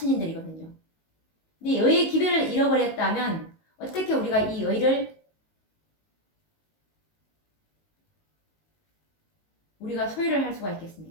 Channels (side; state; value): right; late; 19 ms